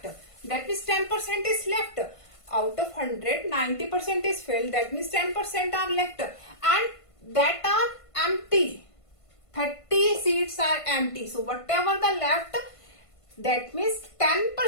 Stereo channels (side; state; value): right; late; 1.5 ms